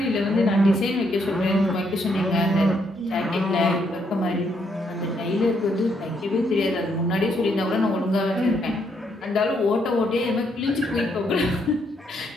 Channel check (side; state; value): both; normal; correlation 0.74